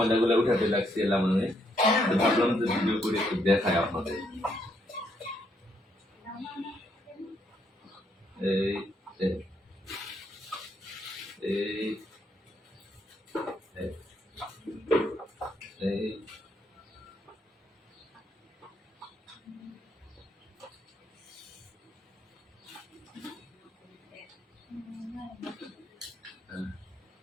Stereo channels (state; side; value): normal; both; correlation 0.74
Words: উঠাতে লাগছি এলাম। আমি ভাবলাম যে ভিডিও করে একটু দেখাই আপনাদের। এই এই এই